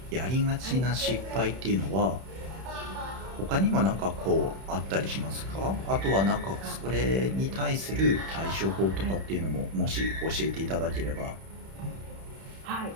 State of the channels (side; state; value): left; late; 31 ms